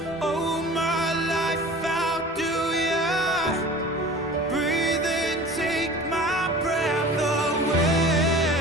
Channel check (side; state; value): both; normal; correlation 0.41